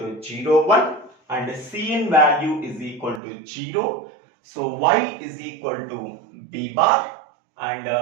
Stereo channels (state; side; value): drops out; left; at 3.2 s